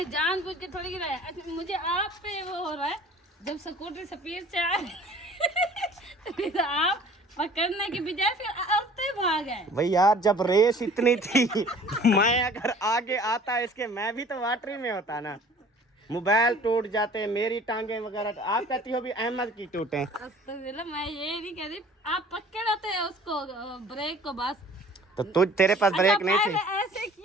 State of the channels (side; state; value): both; normal; correlation 0.49